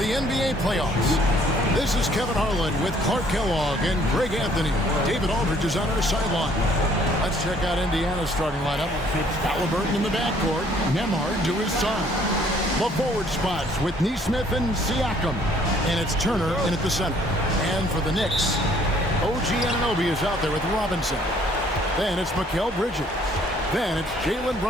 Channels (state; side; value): normal; both; correlation 0.61